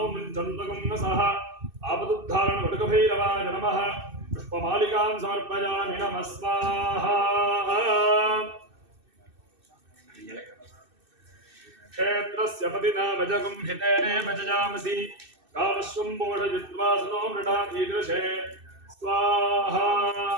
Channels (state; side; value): late; left; 2.6 ms